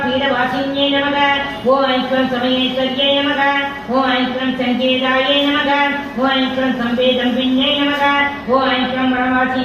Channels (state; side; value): identical; both; correlation 1.00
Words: பீடவாசின்யே நமக ஓம் ஐக்ரம் சமயேஸ்வர்யே நமக ஓம் ஐக்ரம் சங்கேதாயே நமக ஓம் ஐக்ரம் சம்பேதம்பின்யே நமக ஓம் ஐக்ரம்